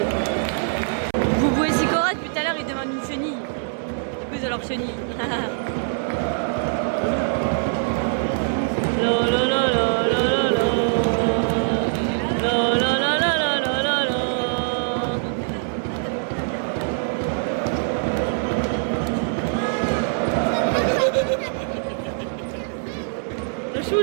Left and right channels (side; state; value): left; silent; 61 dB below the other